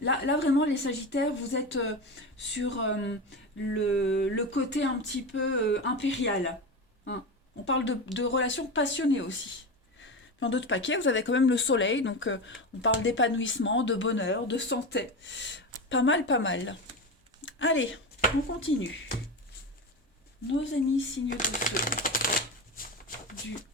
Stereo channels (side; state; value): both; normal; correlation 0.22